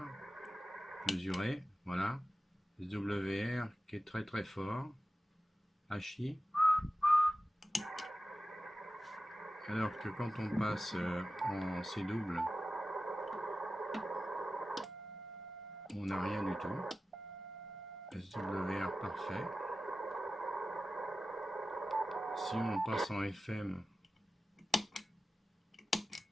mesuré, voilà, SWR qui est très très fort, HI, alors que quand on passe en C double, on n'a rien du tout. SWR parfait. Si on passe en FM,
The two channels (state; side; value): normal; both; correlation 0.94